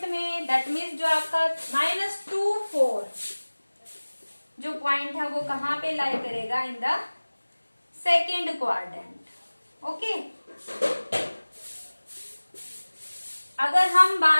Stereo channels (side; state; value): both; inverted; correlation -1.00